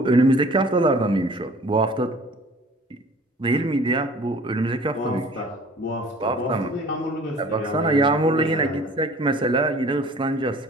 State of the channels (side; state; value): both; normal; correlation 0.50